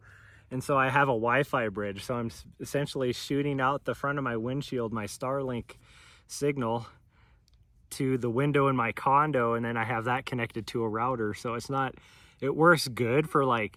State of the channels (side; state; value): both; identical; correlation 1.00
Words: And so I have a Wi-Fi bridge, so I'm essentially shooting out the front of my windshield, my Starlink signal, to the window in my condo, and then I have that connected to a router. So it works good for